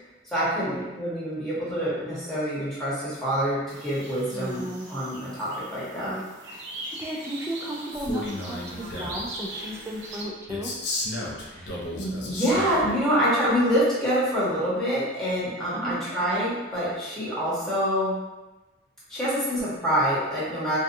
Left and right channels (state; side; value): normal; both; correlation 0.31